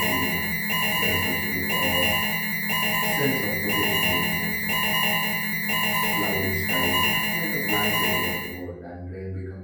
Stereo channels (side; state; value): both; identical; correlation 1.00